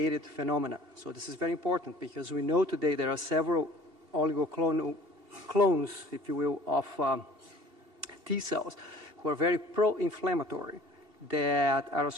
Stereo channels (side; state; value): left; late; 2.8 ms